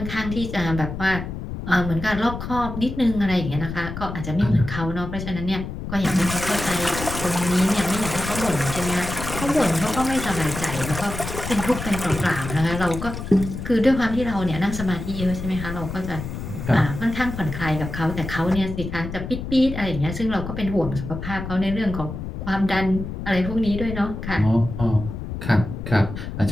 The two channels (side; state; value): left; noise; rumble, 7 dB below the sound